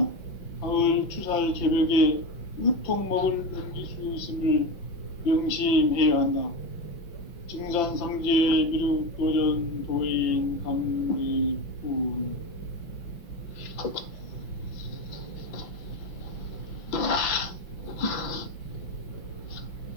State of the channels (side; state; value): right; late; 5.7 ms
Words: 가을 추살 개벽에 으통먹을 넘길 수 있음을 명심해야 한다. 증산상제 미륵도전 도인 강대군.